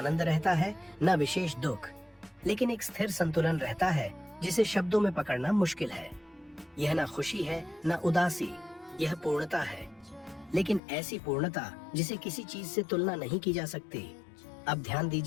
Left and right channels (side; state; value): right; drops out; at 10.8 s